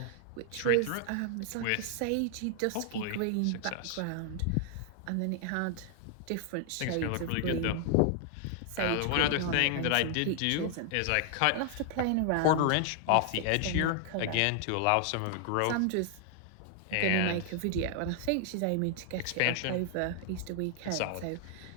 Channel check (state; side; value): different; both; correlation 0.00